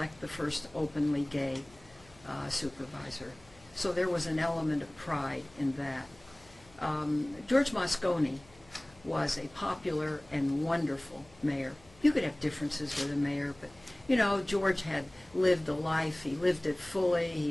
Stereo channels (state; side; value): noise; left; hum, 27 dB below the sound